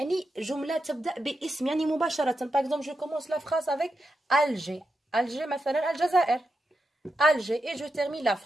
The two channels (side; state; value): both; normal; correlation 0.86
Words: جملة تبدأ باسم يعني مباشرة. Par exemple, je commence la phrase avec Alger. Alger مثلا الجزائر. Alger et je termine la